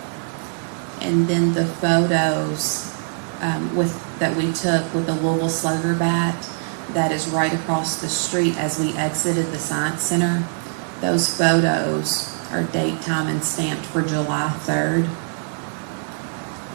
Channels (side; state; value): left; silent; 64 dB below the other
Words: And then the photos that we took with the Louisville Slugger bat that is right across the street as we exited the Science Center. Those photos are date, time, and stamped for July 3rd,